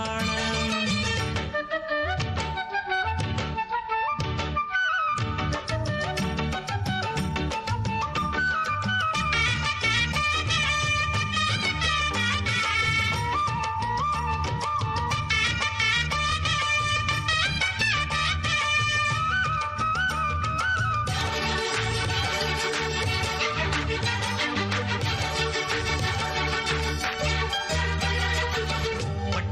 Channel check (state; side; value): identical; both; correlation 1.00